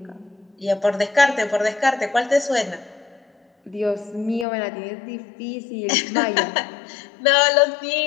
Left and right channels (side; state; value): right; drops out; at 4.5 s